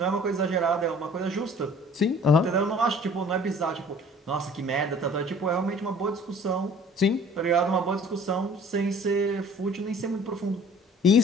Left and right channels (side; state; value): both; normal; correlation 0.51